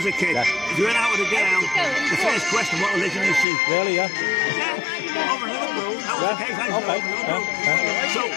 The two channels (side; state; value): right; drops out; at 3.5 s